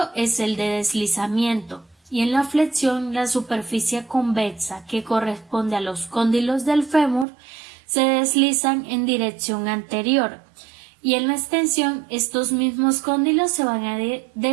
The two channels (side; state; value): left; drops out; at 7.2 s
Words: es el de deslizamiento, y en la flexión la superficie convexa, que corresponde a los cóndilos del fémur, se deslizan en dirección anterior, y en la extensión estos mismos cóndilos se van a